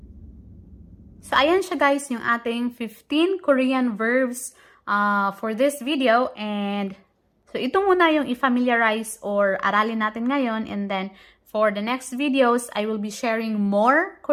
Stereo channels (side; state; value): both; identical; correlation 1.00